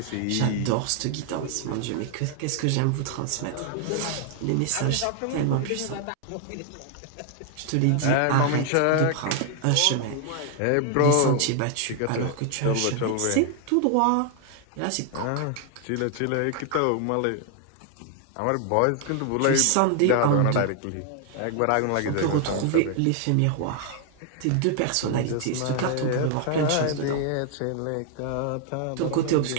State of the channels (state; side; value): different; both; correlation 0.00